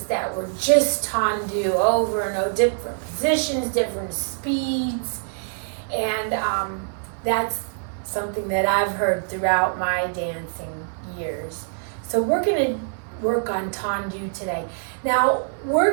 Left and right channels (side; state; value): left; silent; 62 dB below the other